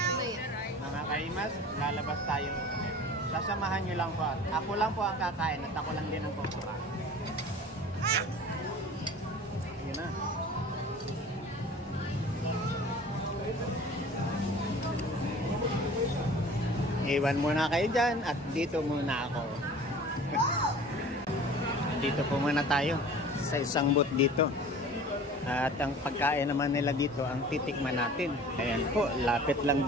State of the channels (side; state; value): both; normal; correlation 0.43